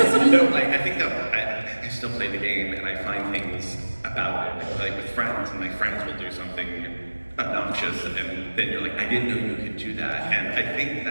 think that I still play the game and I find things about it, like with friends, and my friends will do something obnoxious, and then you're like, I didn't know you could do that. And I think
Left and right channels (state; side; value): inverted; both; correlation -1.00